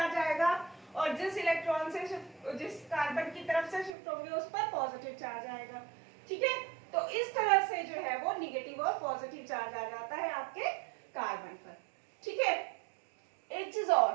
आएगा, और जिस इलेक्ट्रॉन से जिस कार्बन की तरफ से शिफ्ट होंगे उस पर पॉजिटिव चार्ज आएगा। ठीक है, तो इस तरह से जो है वो नेगेटिव और पॉजिटिव चार्ज आ जाता है आपके कार्बन पर। ठीक है, एक चीज और,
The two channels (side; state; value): left; drops out; at 4.0 s